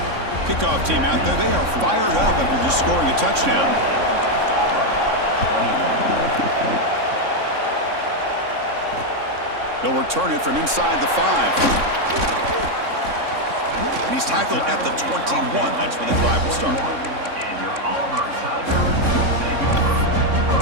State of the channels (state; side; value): late; left; 3.6 ms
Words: Kickoff team out there. They are fired up after just scoring a touchdown. They'll return it from inside the 5. And he's tackled at the 21. That's where the drive will start. And your Auburn Tigers will take over